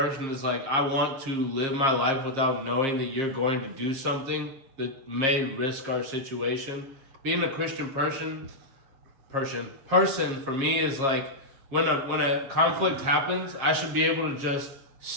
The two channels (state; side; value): late; left; 7.4 ms